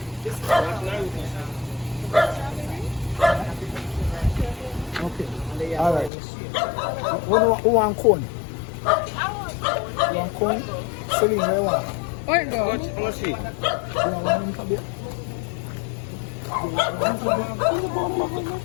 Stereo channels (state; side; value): drops out; right; at 6.1 s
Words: Okay. Alright. Who want cone? You want cone? Celine, where you want? Where it go? How much she? You want one in for beer? Come